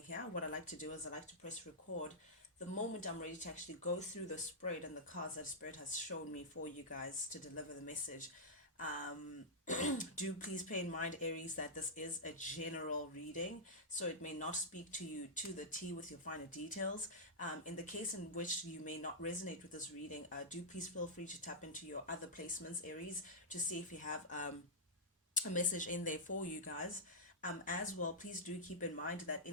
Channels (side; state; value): both; normal; correlation -0.11